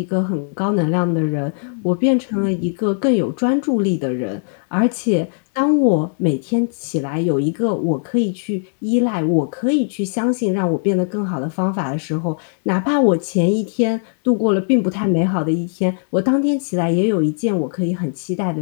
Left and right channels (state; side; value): silent; right; digital silence